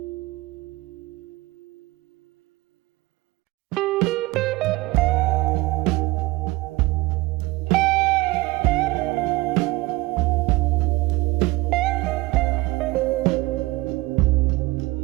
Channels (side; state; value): left; quieter; 20.9 dB